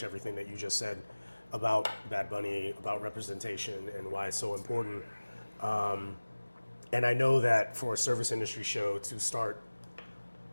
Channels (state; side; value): inverted; both; correlation -1.00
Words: everything that you just said about Bad Bunny, about representation, and why it's so important. And I know that for a service industry show to start